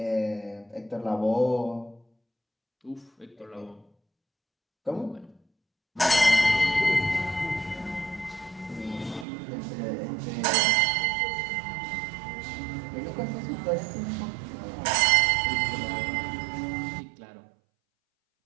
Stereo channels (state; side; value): drops out; left; at 9.2 s